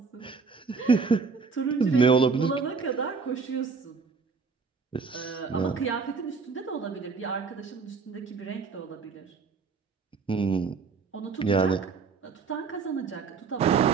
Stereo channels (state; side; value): quieter; left; 4.9 dB